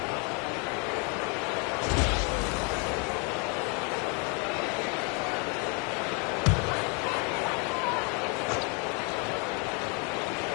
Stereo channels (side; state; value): right; quieter; 34.2 dB